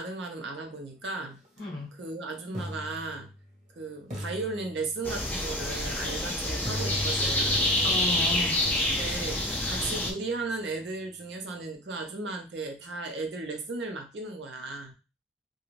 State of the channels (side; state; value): both; normal; correlation 0.33